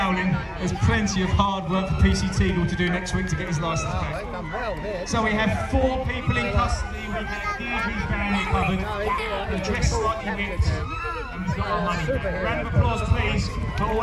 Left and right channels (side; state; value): both; identical; correlation 1.00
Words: there's plenty of hard work for PC Teagle to do next week to get his licence back. So we have 4 people in custody, we have Deirdre's family covered, they're dressed slightly whipped, and we've got our money back. A round of applause please for